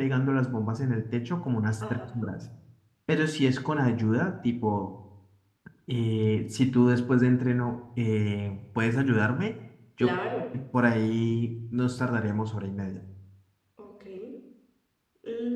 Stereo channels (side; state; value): both; identical; correlation 1.00